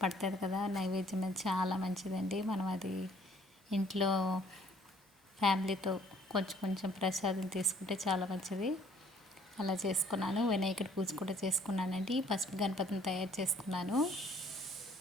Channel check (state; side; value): normal; both; correlation 0.59